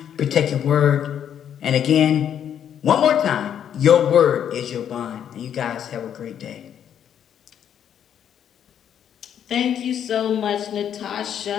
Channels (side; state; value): right; quieter; 9.2 dB